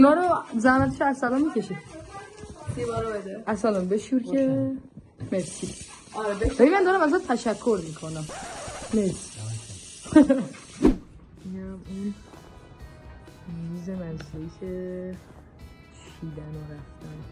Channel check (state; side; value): identical; both; correlation 1.00